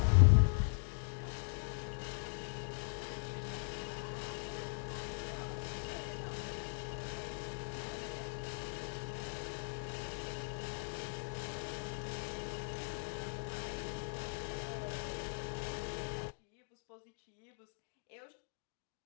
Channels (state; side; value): silent; right; digital silence